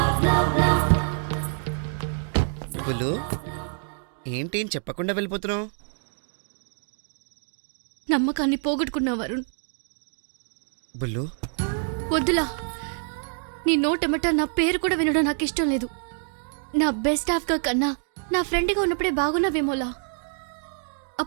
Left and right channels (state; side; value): silent; left; 59 dB below the other